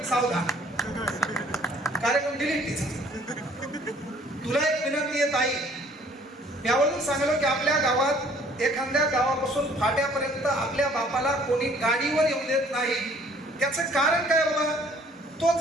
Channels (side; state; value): both; normal; correlation 0.58